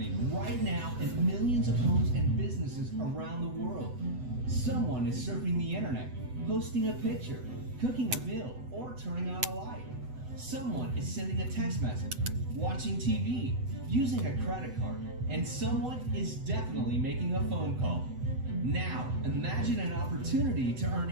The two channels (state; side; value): late; left; 8.0 ms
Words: right now in millions of homes and businesses around the world. Someone is surfing the internet, posting a picture, cooking a meal, or turning on a light. Someone is sending a text message, watching TV, using a credit card, and someone is definitely making a phone call. Now, imagine an opportunity to